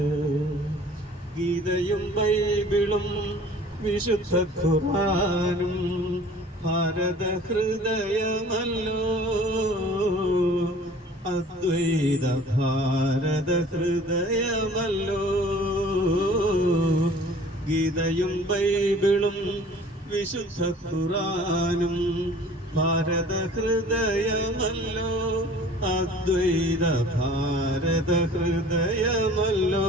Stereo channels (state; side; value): normal; both; correlation 0.48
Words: ഗീതയും ബൈബിളും വിശുദ്ധ ഖുർആനും ഭാരത ഹൃദയമല്ലോ, അദ്വൈത ഭാരത ഹൃദയമല്ലോ. ഗീതയും ബൈബിളും വിശുദ്ധ ഖുർആനും ഭാരത ഹൃദയമല്ലോ, അദ്വൈത ഭാരത ഹൃദയമല്ലോ.